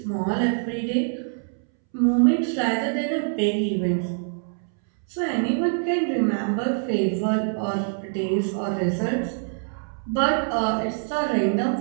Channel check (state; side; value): silent; left; 62 dB below the other